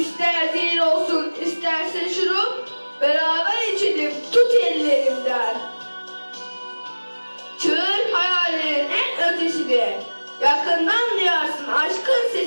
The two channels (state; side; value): inverted; both; correlation -1.00